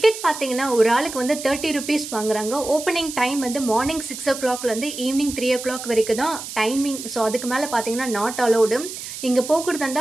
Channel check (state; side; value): noise; right; hiss, 10 dB below the sound